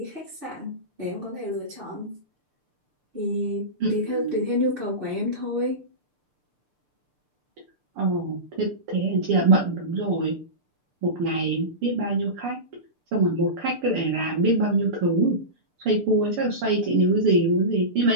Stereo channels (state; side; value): late; left; 6.7 ms